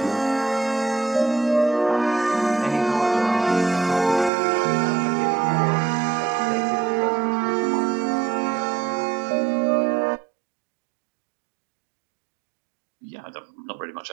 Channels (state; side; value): drops out; left; at 4.3 s